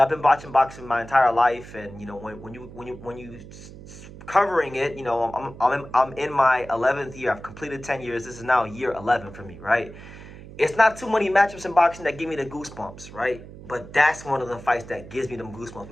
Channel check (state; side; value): noise; right; hum, 16 dB below the sound